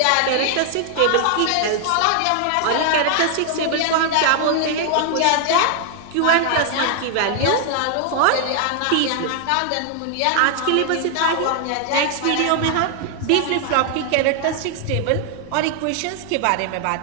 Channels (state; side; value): different; both; correlation 0.00